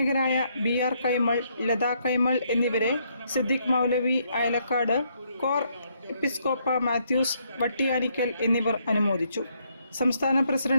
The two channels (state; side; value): inverted; both; correlation -0.73